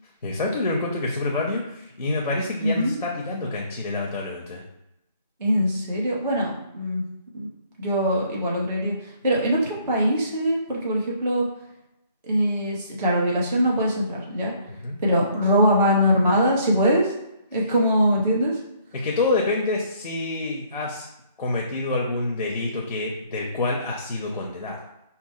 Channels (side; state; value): both; inverted; correlation -0.63